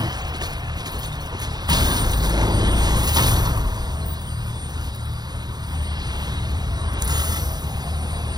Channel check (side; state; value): left; late; 0.20 ms